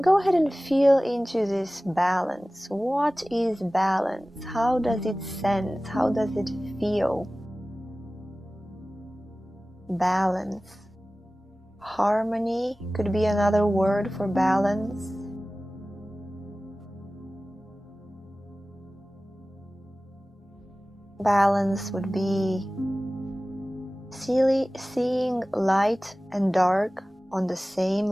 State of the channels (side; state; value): both; normal; correlation 0.97